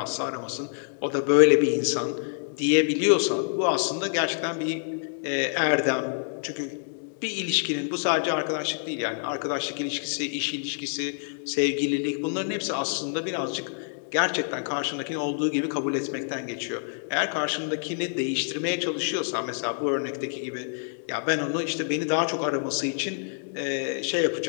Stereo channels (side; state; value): right; silent; digital silence